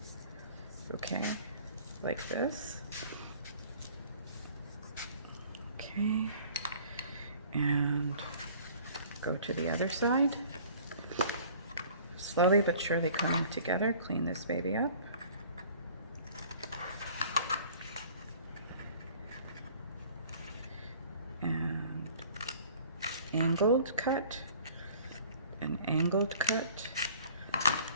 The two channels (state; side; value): inverted; both; correlation -0.51